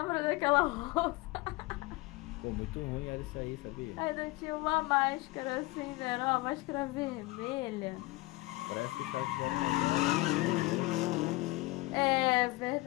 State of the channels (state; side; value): quieter; right; 21.0 dB